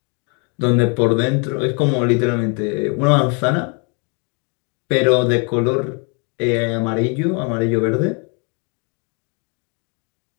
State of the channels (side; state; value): right; quieter; 36.0 dB